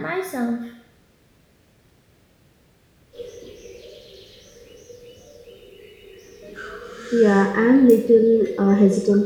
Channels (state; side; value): identical; both; correlation 1.00